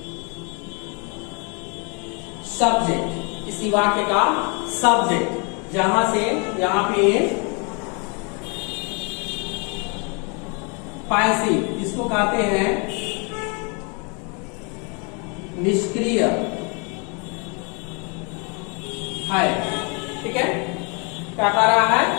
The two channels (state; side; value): quieter; right; 33.8 dB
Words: का सब्जेक्ट, जहां से यहां पे पैसिव, इसको कहते हैं निष्क्रिय है। ठीक है, क्या कह रहा है